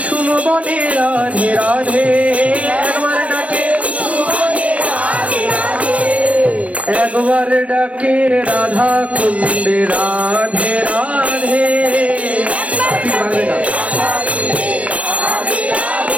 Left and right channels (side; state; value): left; late; 0.064 ms